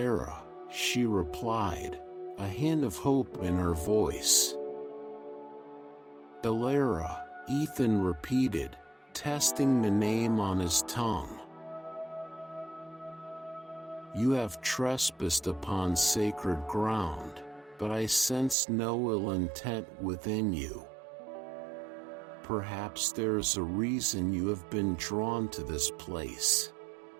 she replied, a hint of hope in her voice. "Alara," Ethan repeated, testing the name on his tongue. "You have trespassed upon sacred ground, but I sense no ill intent within you. Perhaps there is a reason you have been drawn to this place.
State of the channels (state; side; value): drops out; left; at 18.6 s